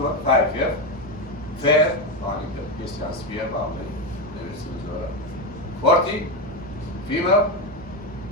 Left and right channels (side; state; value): both; normal; correlation 0.13